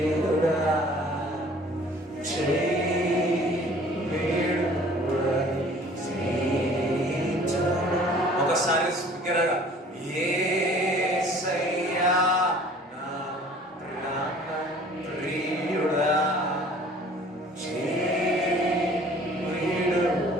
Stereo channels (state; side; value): normal; both; correlation 0.51